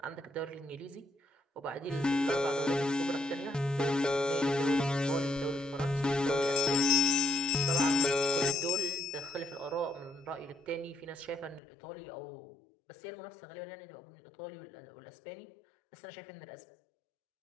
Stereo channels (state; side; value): drops out; right; at 11.6 s